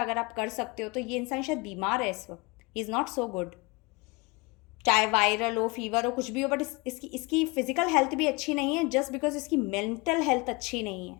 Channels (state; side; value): quieter; right; 26.0 dB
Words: अगर आप कर सकते हो तो। ये इंसान शायद बीमार है इस वक्त, he is not so good, चाहे वायरल हो, फीवर हो, कुछ भी हो, बट इसकी फिजिकल हेल्थ भी अच्छी नहीं है जस्ट बिकॉज इसकी मेंटल हेल्थ अच्छी नहीं